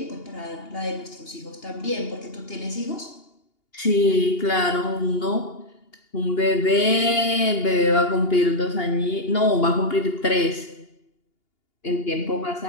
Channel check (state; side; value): late; right; 2.8 ms